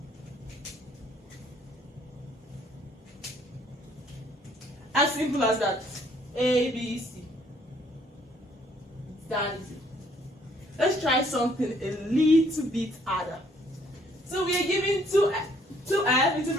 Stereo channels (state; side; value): normal; both; correlation 0.64